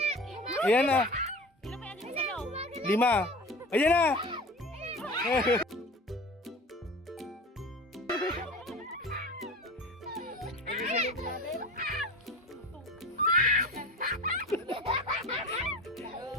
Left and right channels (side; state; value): both; normal; correlation 0.35